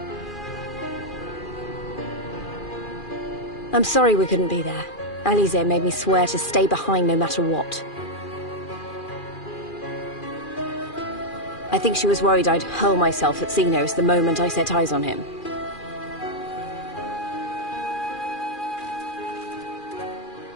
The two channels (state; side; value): late; right; 2.4 ms